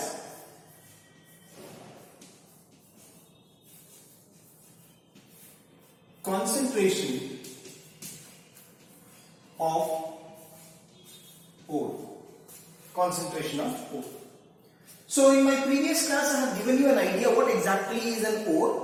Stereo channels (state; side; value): identical; both; correlation 1.00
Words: concentration of ore. Concentration of ore. So in my previous class I have given you an idea what exactly is an